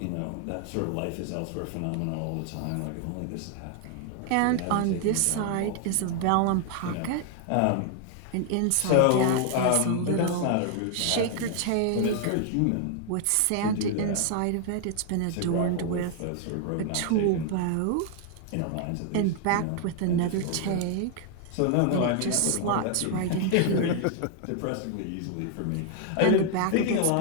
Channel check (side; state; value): both; different; correlation 0.00